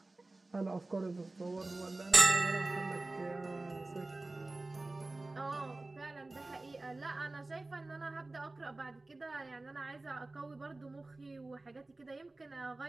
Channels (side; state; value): left; quieter; 3.0 dB